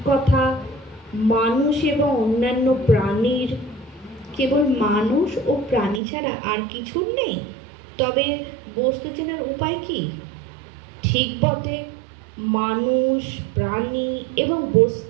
কথা। মানুষ এবং অন্যান্য প্রাণীর, কেবল মানুষ ও প্রাণী ছাড়া আর কিছুর নেই। তবে বস্তু চেনার উপায় কি? ঠিক বটে, মানুষ, প্রাণী এবং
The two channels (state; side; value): drops out; left; at 6.0 s